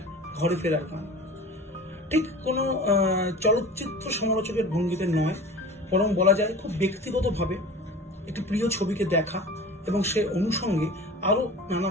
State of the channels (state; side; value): normal; both; correlation 0.37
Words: ঘরে ফেরার গান। ঠিক কোনো চলচ্চিত্র সমালোচকের ভঙ্গিতে নয়, বরং বলা যায় খুব ব্যক্তিগতভাবে একটি প্রিয় ছবিকে দেখা এবং সে অনুষঙ্গে আরো নানা